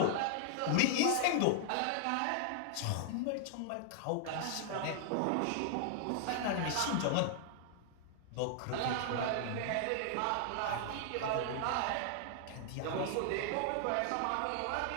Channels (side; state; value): both; different; correlation -0.01